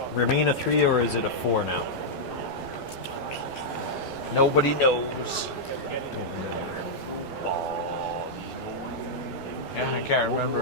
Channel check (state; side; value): late; right; 12 ms